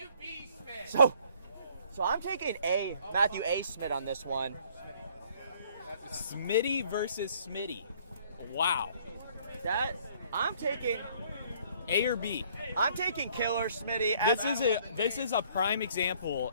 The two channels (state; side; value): inverted; both; correlation -0.60